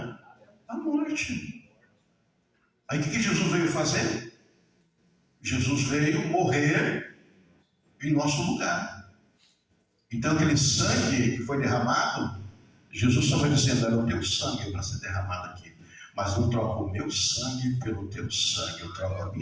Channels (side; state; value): both; identical; correlation 1.00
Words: morte. Aí o que Jesus veio fazer? Jesus veio morrer em nosso lugar. Então aquele sangue que foi derramado, Jesus estava dizendo, era o teu sangue para ser derramado aqui. Mas eu troco o meu sangue pelo teu sangue, eu troco a